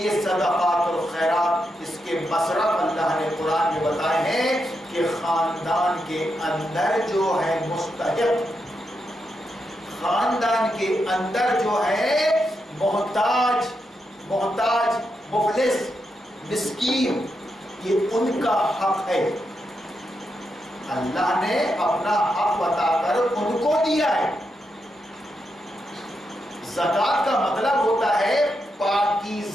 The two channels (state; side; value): normal; both; correlation 0.84